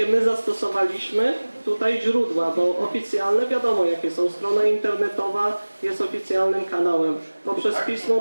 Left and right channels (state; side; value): inverted; both; correlation -1.00